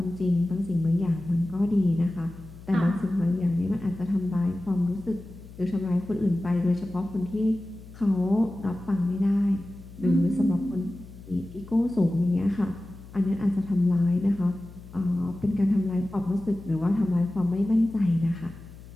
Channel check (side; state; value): left; noise; hum, 18 dB below the sound